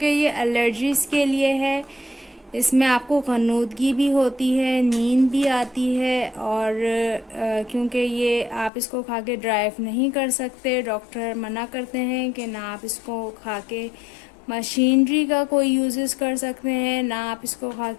ये एलर्जीज़ के लिए है। इसमें आपको ग़नूदगी भी होती है, नींद भी आती है, और क्योंकि ये आप इसको खा के ड्राइव नहीं कर सकते, डॉक्टर मना करते हैं कि ना आप इसको खा के मशीनरी का कोई यूजेस कर सकते हैं, ना आप इसको खा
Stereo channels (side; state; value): right; drops out; at 8.7 s